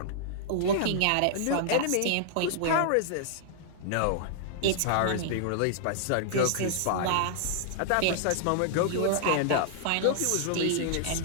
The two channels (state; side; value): different; both; correlation -0.01